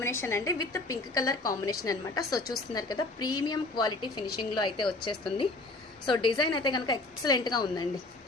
అండి, విత్ పింక్ కలర్ కాంబినేషన్ అనమాట. సో చూస్తున్నారు కదా, ప్రీమియం క్వాలిటీ ఫినిషింగ్లో అయితే వచ్చేస్తుంది. సో డిజైన్ అయితే కనుక ఎక్సలెంట్గా ఉందండి.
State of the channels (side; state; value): right; quieter; 3.1 dB